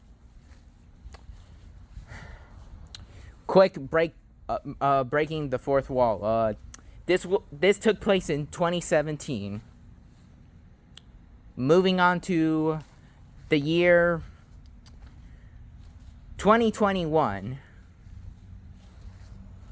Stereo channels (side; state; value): both; identical; correlation 1.00